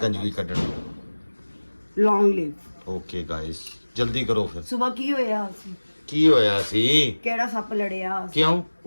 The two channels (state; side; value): inverted; both; correlation -1.00